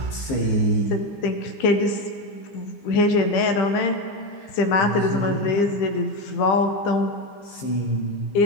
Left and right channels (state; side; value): late; right; 15 ms